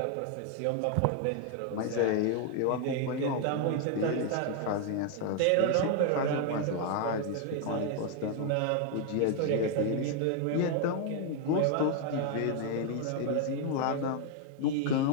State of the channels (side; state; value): both; different; correlation 0.00